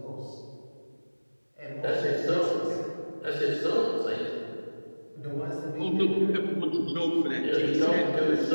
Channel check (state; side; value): inverted; both; correlation -1.00